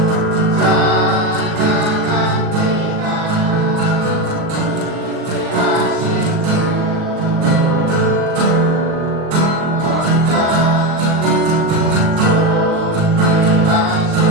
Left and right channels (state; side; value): late; left; 38 ms